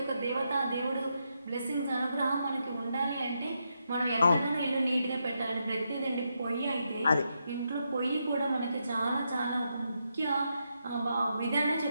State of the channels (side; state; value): both; inverted; correlation -0.82